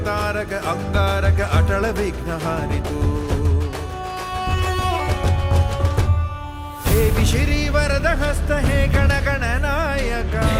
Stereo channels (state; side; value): identical; both; correlation 1.00